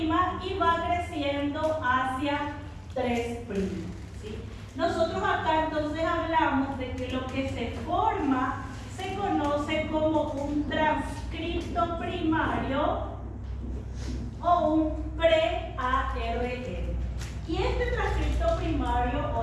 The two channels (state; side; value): identical; both; correlation 1.00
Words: y va creciendo hacia 3'. ¿Sí? Nosotros acá entonces hablamos de que lo que se forma se conoce como un transcripto primario o un pre-ARN. Y este transcripto primario